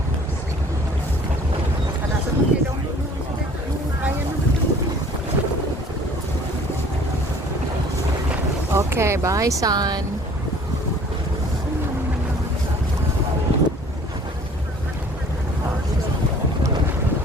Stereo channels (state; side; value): normal; both; correlation 0.52